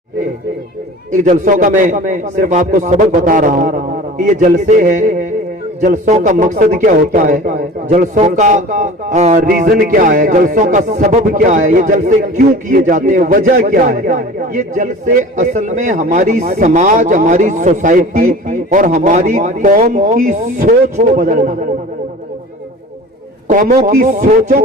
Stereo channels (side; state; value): both; normal; correlation 0.40